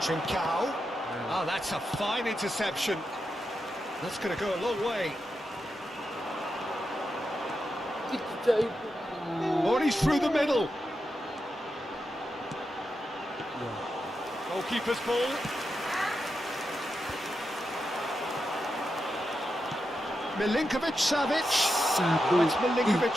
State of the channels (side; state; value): both; normal; correlation 0.87